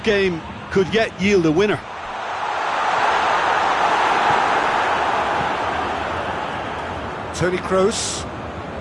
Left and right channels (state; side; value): identical; both; correlation 1.00